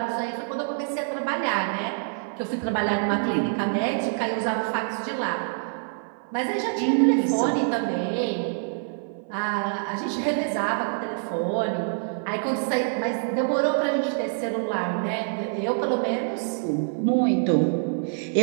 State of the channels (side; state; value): left; silent; 56 dB below the other